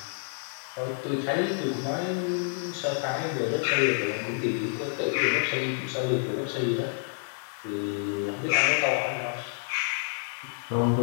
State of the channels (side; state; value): right; silent; 59 dB below the other